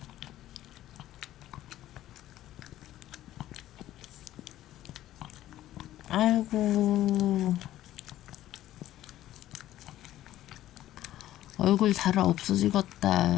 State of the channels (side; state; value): right; quieter; 13.7 dB